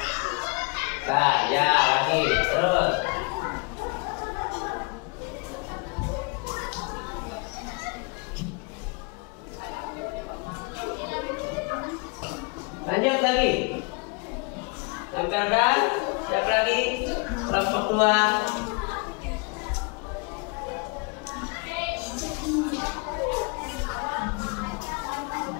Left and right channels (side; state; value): right; quieter; 31.9 dB